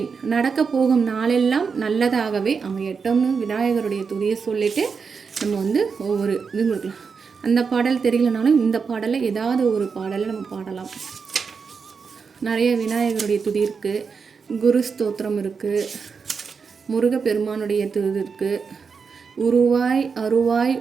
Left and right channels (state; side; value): quieter; left; 5.5 dB